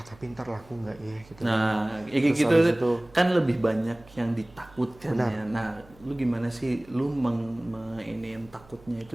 ntar laku nggak ya gitu. Nah, gitu kan lebih banyak yang ditakutkan ya. Nah, lu gimana sih, lu yang takutnya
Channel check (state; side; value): noise; right; hum, 25 dB below the sound